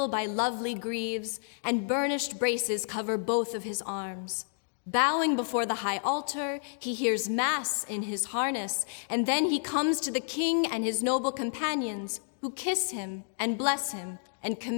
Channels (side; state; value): right; silent; digital silence